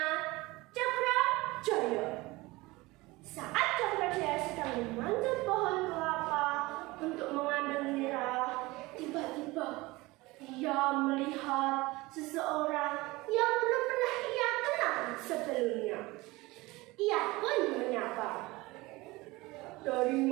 Cakrajaya. Saat Cakrajaya sedang memanjat pohon kelapa untuk mengambil nira, tiba-tiba ia melihat seseorang yang belum pernah ia kenal sebelumnya. Ia pun menyapa, "Dari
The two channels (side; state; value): left; quieter; 21.5 dB